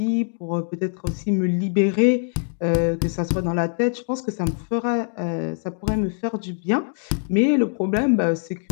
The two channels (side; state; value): right; silent; digital silence